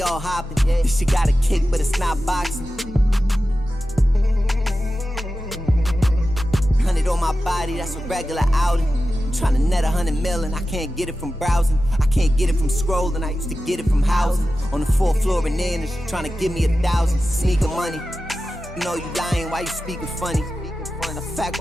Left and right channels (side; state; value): both; normal; correlation 0.93